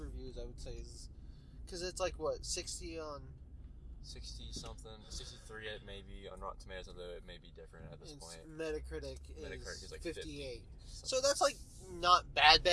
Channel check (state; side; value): identical; both; correlation 1.00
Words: I would say. Because it's like, what, 60 on... 60-something, 63 maybe on Rotten Tomatoes, although it may be different at this point. Metacritic Metacritic is like 58. So that's like not